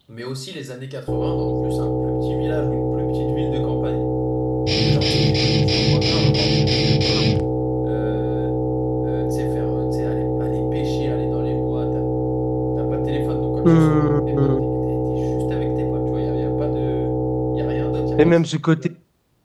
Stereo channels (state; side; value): identical; both; correlation 1.00